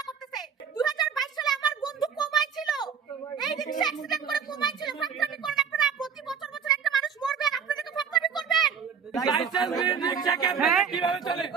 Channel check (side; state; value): left; quieter; 6.9 dB